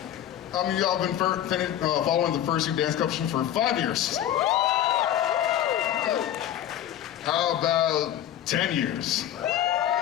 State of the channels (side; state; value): right; quieter; 11.5 dB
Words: How many of y'all have been following the Fursuit dance competition for 5 years? Okay. How about 10 years?